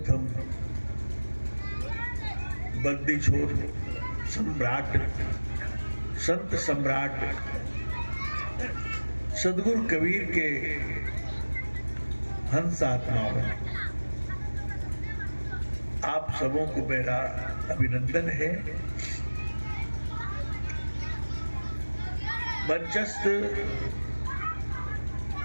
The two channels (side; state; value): both; inverted; correlation -1.00